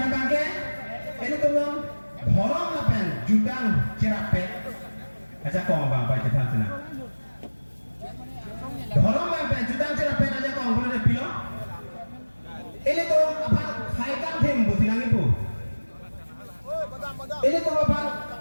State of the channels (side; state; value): both; inverted; correlation -1.00